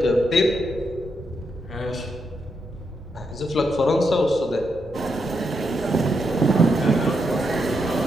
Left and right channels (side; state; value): both; normal; correlation 0.81